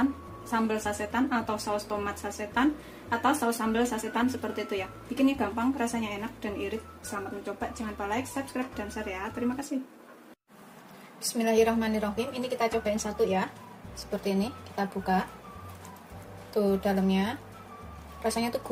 sambal sasetan atau saus tomat sasetan atau saus sambal sasetan seperti itu ya. Bikinnya gampang, rasanya enak dan irit. Selamat mencoba, jangan lupa like, subscribe, dan share ya. Terima kasih. Bismillahirrahmanirrahim. Ini kita cobain satu ya. Seperti ini, kita buka. Tuh dalamnya. Rasanya tuh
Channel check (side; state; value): both; identical; correlation 1.00